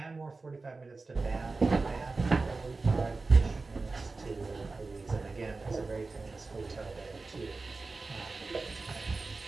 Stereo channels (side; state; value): left; quieter; 3.8 dB